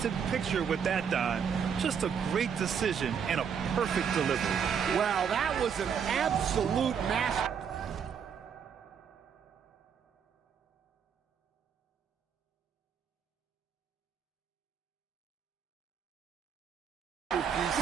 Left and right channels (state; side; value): quieter; left; 7.3 dB